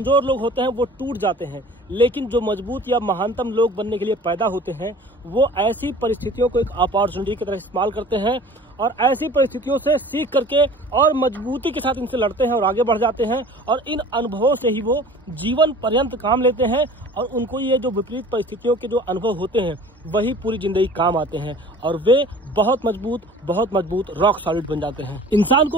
लोग होते हैं वो टूट जाते हैं, लेकिन जो मजबूत या महानतम लोग बनने के लिए पैदा होते हैं वो ऐसी परिस्थितियों को एक अपॉर्चुनिटी की तरह इस्तेमाल करते हैं और ऐसी परिस्थितियों से सीख करके और मजबूती के साथ इनसे लड़ते हैं और आगे बढ़ जाते हैं। और इन अनुभवों से ही वो जीवन पर्यंत काम लेते हैं और उनको ये जो विपरीत परिस्थितियों के जो अनुभव होते हैं वही पूरी जिंदगी काम आते हैं और वे बहुत मजबूत रॉक सॉलिड बन जाते हैं। इंसान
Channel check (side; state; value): both; normal; correlation 0.45